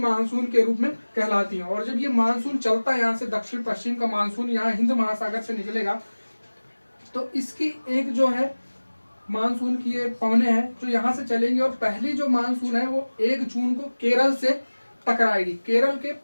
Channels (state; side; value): inverted; both; correlation -1.00